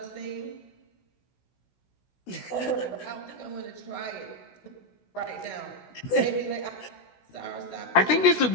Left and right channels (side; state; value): right; late; 16 ms